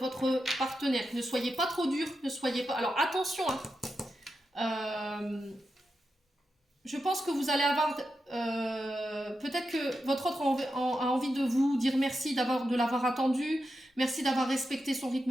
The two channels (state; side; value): normal; both; correlation 0.88